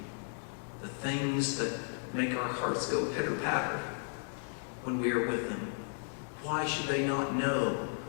The things that make our hearts go pitter-patter when we are with them. Why should they not know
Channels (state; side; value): silent; right; digital silence